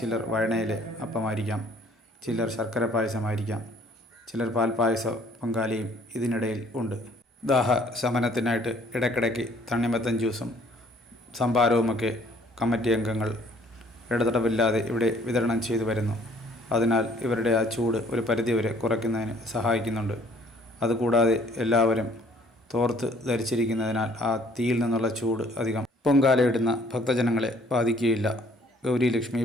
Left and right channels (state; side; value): normal; both; correlation 0.59